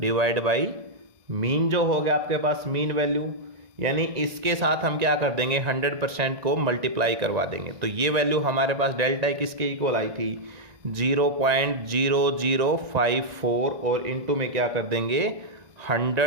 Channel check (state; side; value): late; left; 1.9 ms